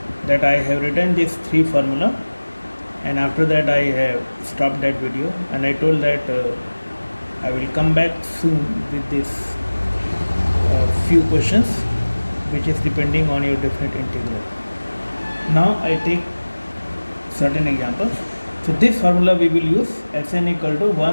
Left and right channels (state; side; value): inverted; both; correlation -1.00